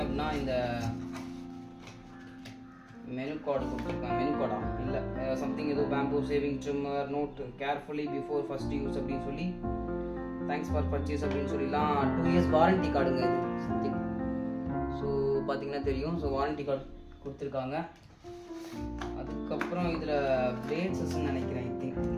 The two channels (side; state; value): both; identical; correlation 1.00